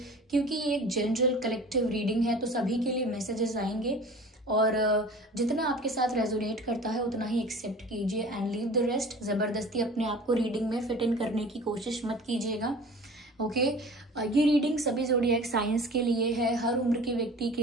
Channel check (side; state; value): both; normal; correlation 0.42